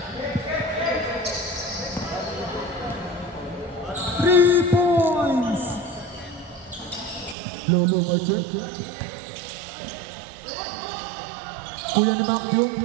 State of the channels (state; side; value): drops out; left; at 7.4 s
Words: Lolo Martin. Kuya ni Macdum,